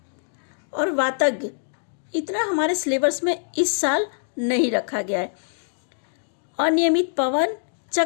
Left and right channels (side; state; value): right; silent; digital silence